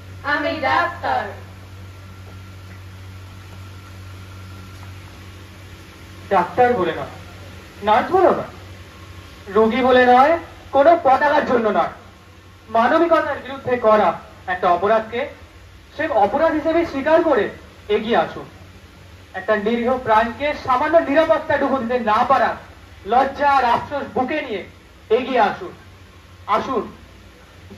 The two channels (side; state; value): both; identical; correlation 1.00